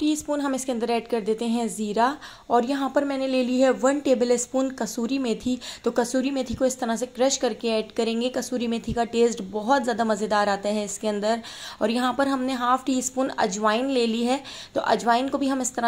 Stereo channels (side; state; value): both; identical; correlation 1.00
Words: स्पून हम इसके अंदर ऐड कर देते हैं ज़ीरा, और यहाँ पर मैंने ले ली है 1 टेबल स्पून कसूरी मेथी। तो कसूरी मेथी को इस तरह से क्रश करके ऐड करेंगे। कसूरी मेथी का टेस्ट बहुत ज़्यादा मज़ेदार आता है इसके अंदर। और यहाँ पर हमने हाफ टी स्पून अजवाइन ले ली है, तो अजवाइन को भी हम इस